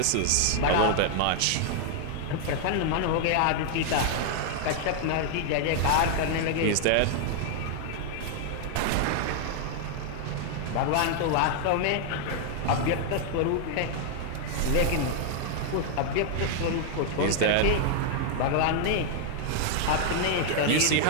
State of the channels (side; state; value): both; different; correlation 0.00